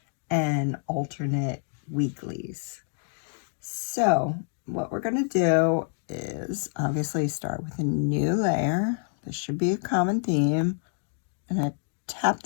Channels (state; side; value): silent; right; 60 dB below the other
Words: and alternate weeklies. So what we're going to do is obviously start with a new layer. This should be a common theme. I'm going to tap